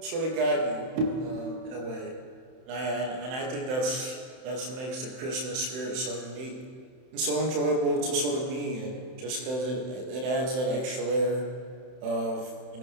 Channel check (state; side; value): late; left; 31 ms